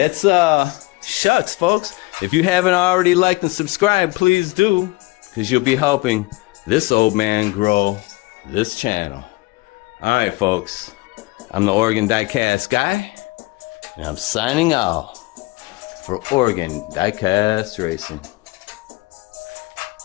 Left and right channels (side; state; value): right; quieter; 22.9 dB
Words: shucks, folks. If you haven't already liked and subscribed, please do, because you'll be helping this old man grow this channel. All right, folks. I'm the Oregon Diecast guy, and I'm signing off for Oregon Diecast Racing.